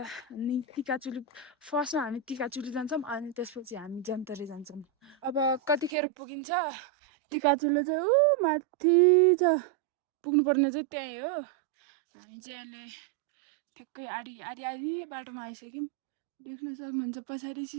अनि टिकाचुली फर्स्टमा हामी टिकाचुली जान्छौँ अनि त्यसपछि हामी जन्तरे जान्छौँ अब कतिखेर पुगिन्छ टिकाचुली चाहिँ ऊ माथि छ पुग्नुपर्ने चाहिँ त्यहीँ हो हामी चाहिँ अहिले ठ्याक्कै आधी बाटोमा आइसक्यौँ देख्न सक्नुहुन्छ पछाडि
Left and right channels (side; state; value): left; drops out; at 5.9 s